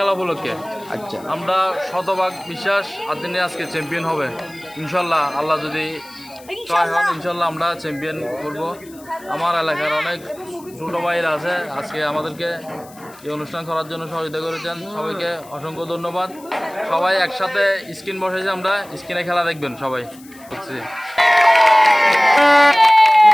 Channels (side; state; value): left; noise; hiss, 23 dB below the sound